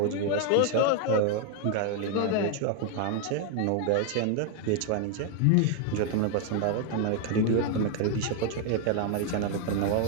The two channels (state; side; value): different; both; correlation 0.01